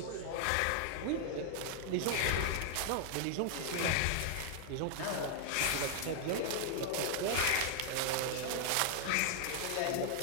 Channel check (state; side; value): different; both; correlation 0.00